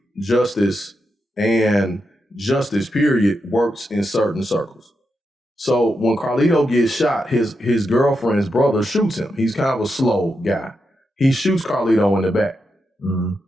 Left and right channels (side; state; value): both; normal; correlation 0.86